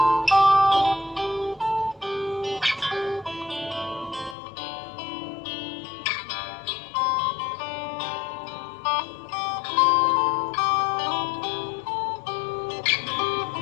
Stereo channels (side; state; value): right; drops out; at 4.4 s